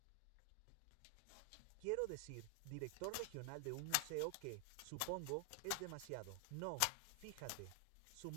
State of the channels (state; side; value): different; both; correlation 0.00